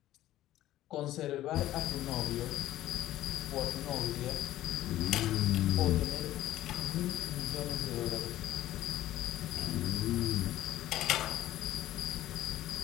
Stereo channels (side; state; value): right; quieter; 14.3 dB